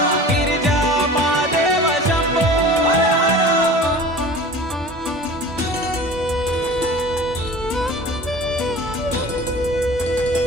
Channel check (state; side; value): normal; both; correlation 0.39